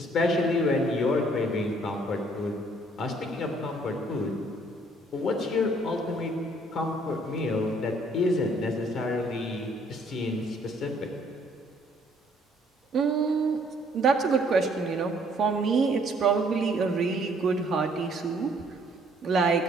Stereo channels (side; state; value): both; normal; correlation 0.62